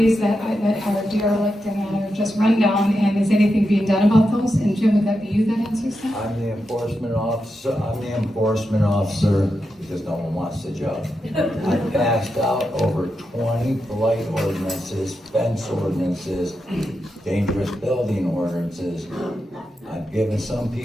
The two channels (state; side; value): normal; both; correlation 0.87